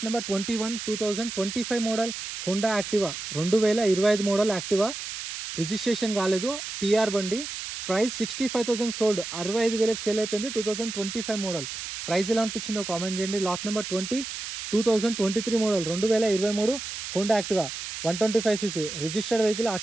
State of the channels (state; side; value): noise; right; hiss, 7 dB below the sound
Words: number 21 2025 model Honda Activa, 2025 model Activa, registration కాలేదు, టీఆర్ బండి. ప్రైస్ 65,000 సోల్డ్, 65,000కి సేల్ అయిపోయింది. 2025 మోడల్. ప్రైస్ ఎలా అనిపించిందో కామెంట్ చేయండి. Lot number 20 2023 model 2023 Honda Activa, 125cc, registered vehicle,